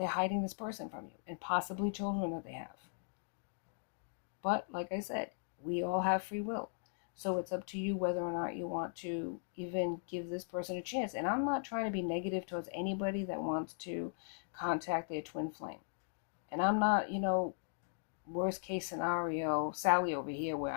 hiding this person from you and possibly children that they have. But like I said, we all have free will. So it's up to you whether or not you want to even give this person a chance. And I'm not trying to be negative towards anybody that wants to contact their twin flame. And I'm not, worst case scenario, Sally over here, where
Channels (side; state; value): right; silent; digital silence